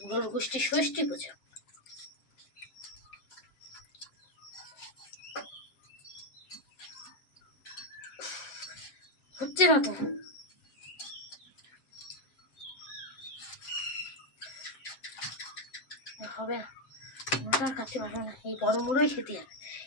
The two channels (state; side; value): late; right; 7.6 ms